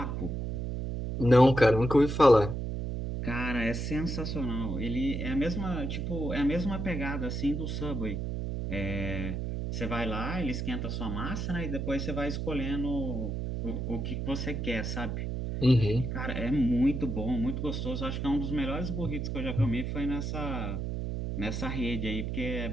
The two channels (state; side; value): noise; right; hum, 3 dB below the sound